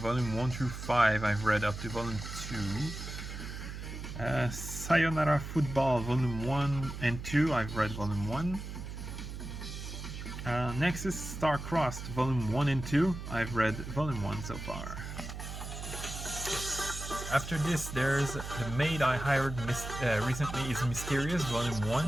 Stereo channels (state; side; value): noise; right; hum, 8 dB below the sound